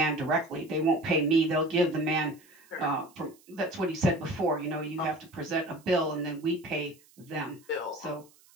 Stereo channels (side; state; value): right; noise; hiss, 28 dB below the sound